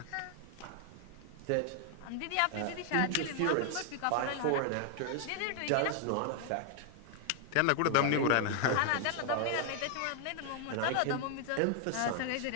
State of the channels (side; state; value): both; different; correlation 0.00